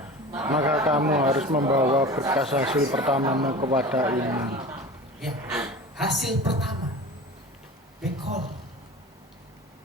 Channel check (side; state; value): both; normal; correlation 0.35